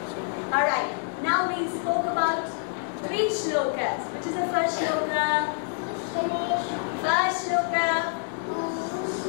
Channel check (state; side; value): silent; right; 60 dB below the other